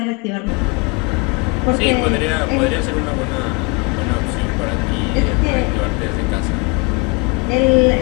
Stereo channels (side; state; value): right; quieter; 28.6 dB